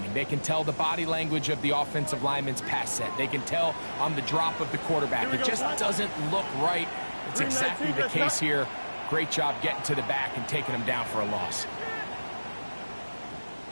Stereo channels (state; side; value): inverted; both; correlation -1.00